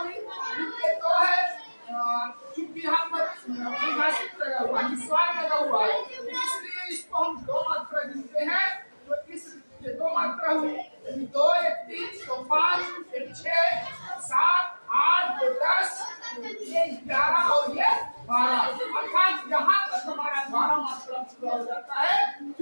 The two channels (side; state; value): both; inverted; correlation -1.00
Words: इनके 2 है। चूंकि यहाँ पर परिभाषित लगा हुआ है, निस्वार लगा हुआ है, इसलिए इसको हम 2 मात्रा गिनते हैं। तो इस 2 मात्रा हुई, 2, 1, 3, तो 5, 1, 6, 7, 8, 2, 10, ये 11 और ये 12, अर्थात यहाँ तक हमारा 12 मात्रा पूरा हो जाता है।